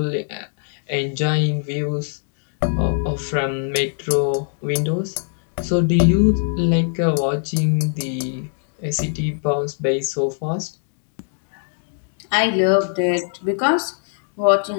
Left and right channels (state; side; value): silent; right; digital silence